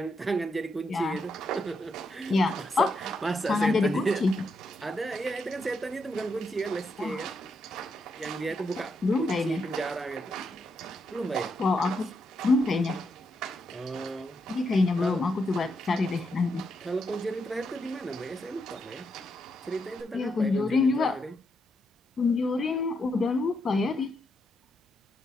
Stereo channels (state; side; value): normal; both; correlation 0.81